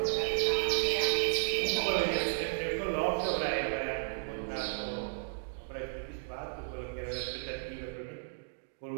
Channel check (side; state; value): left; silent; digital silence